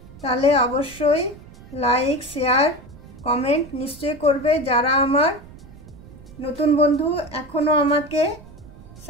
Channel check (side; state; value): right; noise; rumble, 19 dB below the sound